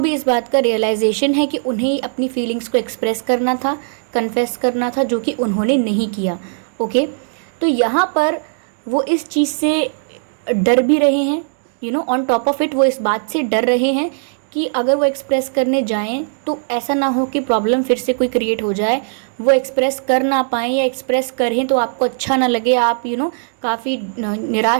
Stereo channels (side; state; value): left; silent; digital silence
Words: इस बात का रियलाइजेशन है कि उन्हें अपनी फीलिंग्स को एक्सप्रेस करना था, कन्फेस करना था, जो कि उन्होंने नहीं किया। ओके, तो यहाँ पर वो इस चीज़ से डर भी रहे हैं, ऑन टॉप ऑफ इट वो इस बात से डर रहे हैं कि अगर वो एक्सप्रेस करने जाएं तो ऐसा ना हो कि प्रॉब्लम फिर से कोई क्रिएट हो जाए, वो एक्सप्रेस कर ना पाएँ, या एक्सप्रेस करें तो आपको अच्छा ना लगे, आप काफ़ी